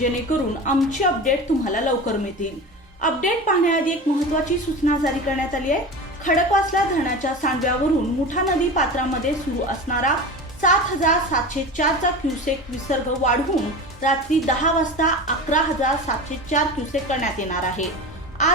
आमचे अपडेट तुम्हाला लवकर मिळतील। अपडेट पाहण्याआधी एक महत्त्वाची सूचना जारी करण्यात आली आहे। खडकवासला धरणाच्या सांडव्यावरून मुठा नदी पात्रामध्ये सुरू असणारा 7,704 चा क्युसेक विसर्ग वाढवून रात्री 10 वाजता 11,704 क्युसेक करण्यात येणार आहे।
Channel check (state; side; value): normal; both; correlation 0.30